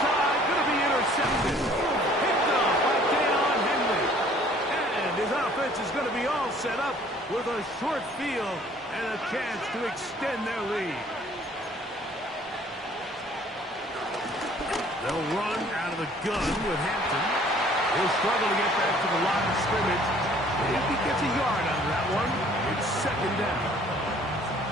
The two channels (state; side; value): normal; both; correlation 0.56